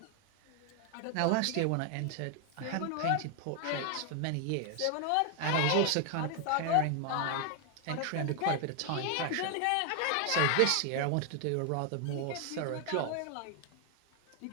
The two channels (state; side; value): different; both; correlation 0.00